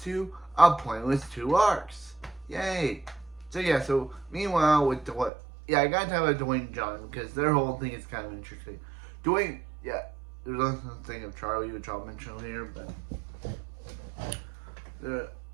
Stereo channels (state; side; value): drops out; left; at 5.3 s